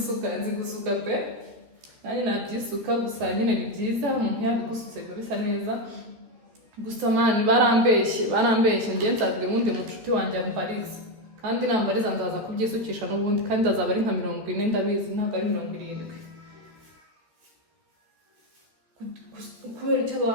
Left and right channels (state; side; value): late; left; 13 ms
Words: gusuka pe nanjye nabyisuka gusa nyine ni byiza umuntu yabigusutse biba bisa neza gusa man barambeshye njye nzabwira undi mucuti wanjye ambariza kandi nambariza ndaza kubyisukisha n'ubundi kandi azaba ari nka 40 ndabizi ntabwo ari 70. Kubera icyo